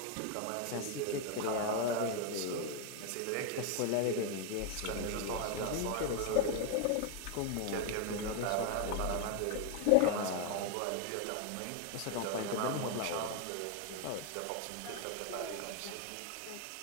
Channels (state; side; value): different; both; correlation 0.01